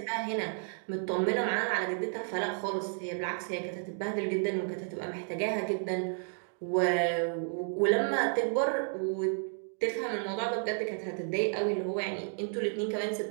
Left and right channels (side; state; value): left; silent; 56 dB below the other